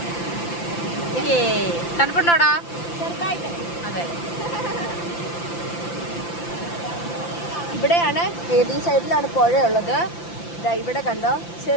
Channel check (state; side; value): late; right; 5.9 ms